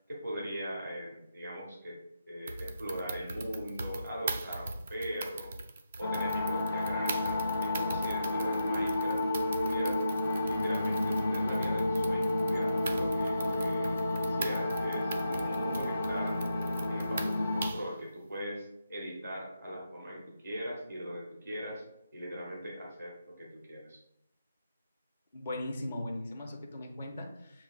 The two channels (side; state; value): both; inverted; correlation -0.84